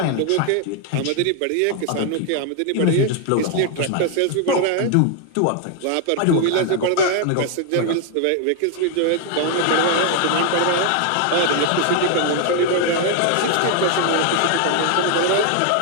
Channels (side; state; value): both; different; correlation 0.00